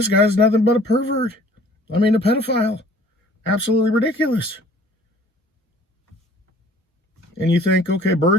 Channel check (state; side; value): normal; both; correlation 0.52